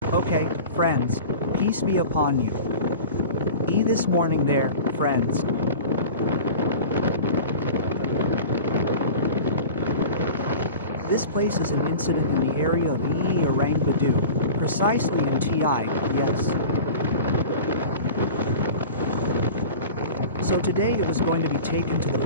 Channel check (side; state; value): both; inverted; correlation -0.35